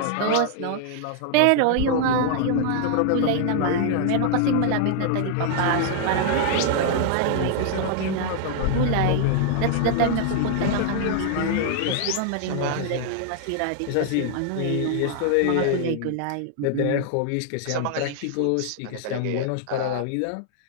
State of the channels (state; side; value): different; both; correlation -0.01